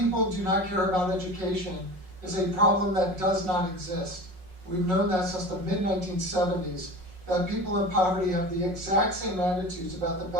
do not care about education is a problem that does not exist. We've known that since the mid-1970s, that people in poverty have the exact same attitudes about the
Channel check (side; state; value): left; late; 5.4 ms